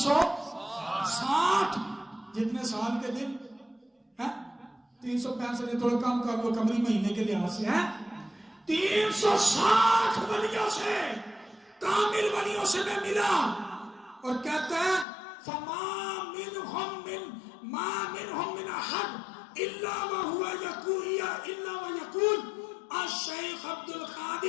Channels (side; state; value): right; drops out; at 15.1 s